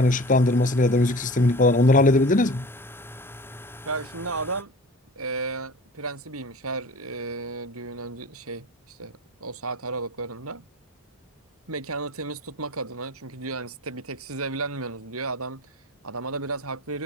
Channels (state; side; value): normal; both; correlation 0.40